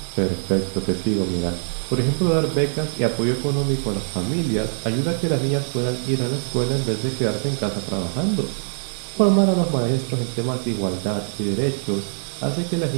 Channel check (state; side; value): silent; left; digital silence